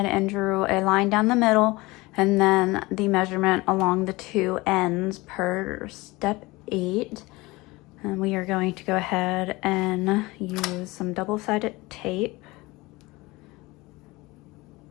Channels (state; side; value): quieter; right; 21.9 dB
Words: and drew a line down the middle and then the measurement along the 2 ends per step 8. And we are going to go ahead and use some double-sided tape.